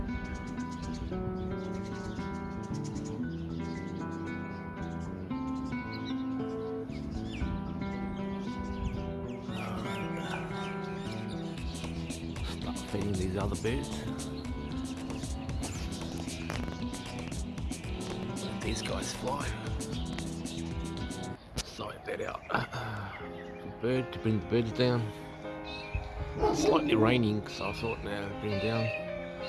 these other birds. Let these guys fly. Sort that out. Bird to bring the birds down. It's slightly raining, so I thought now bring them down.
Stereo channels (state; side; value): identical; both; correlation 1.00